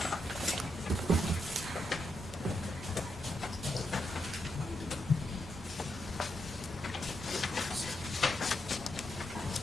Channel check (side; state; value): both; normal; correlation 0.83